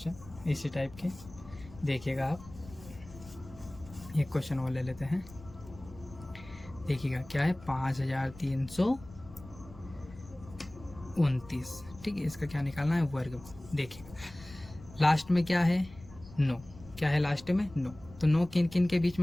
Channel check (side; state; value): left; noise; rumble, 18 dB below the sound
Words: इसी टाइप के, देखिएगा आप एक क्वेश्चन और ले लेते हैं। देखिएगा क्या है 5329, ठीक है। इसका क्या निकालना है, वर्गमूल। देखिएगा लास्ट में क्या है 9, क्या है लास्ट में 9। तो 9 किन किन के बीच